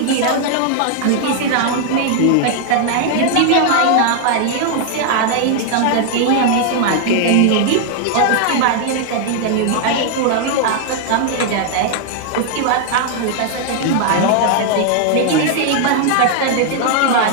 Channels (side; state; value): both; different; correlation 0.00